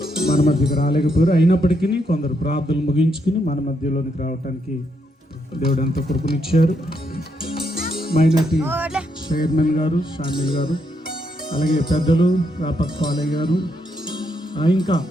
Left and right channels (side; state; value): both; normal; correlation 0.78